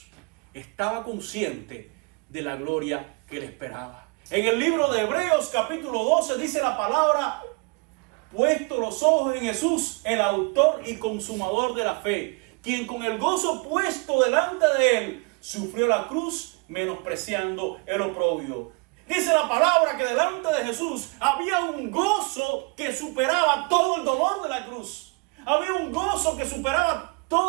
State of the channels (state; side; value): quieter; left; 31.1 dB